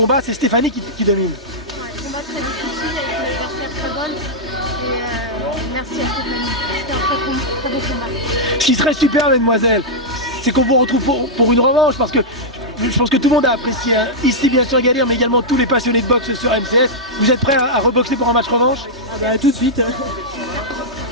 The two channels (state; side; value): normal; both; correlation -0.08